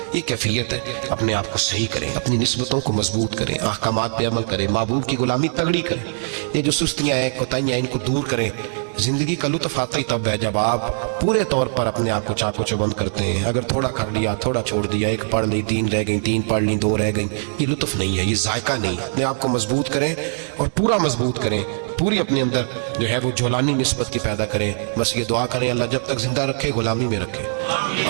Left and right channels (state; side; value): silent; left; digital silence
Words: یہ کیفیت ہے، اپنے آپ کو صحیح کریں، اپنی نسبتوں کو مضبوط کریں، احکامات پہ عمل کریں، معبود کی غلامی تگڑی کریں۔ یہ جو سستیاں ہیں، کوتاہیاں، ان کو دور کریں۔ زندگی کا لطف آتا ہی تب ہے جب آپ پورے طور پر اپنے آپ کو چاق و چوبند کرتے ہیں۔ اگر تھوڑا کر لیا، تھوڑا چھوڑ دیا، 1 پڑھ لی، 3 رہ گئیں، 3 پڑھ لی، 2 رہ گئیں، یہ لطف نہیں ہے، یہ ذائقہ نہیں ہے۔ اپنے آپ کو مضبوط کریں اور پورا مضبوط کریں، پوری اپنے اندر جو ہے وہ جولانی نسبت کی پیدا کریں۔ بس یہ دعا کریں اللہ جب تک زندہ رکھے غلامی میں رکھے،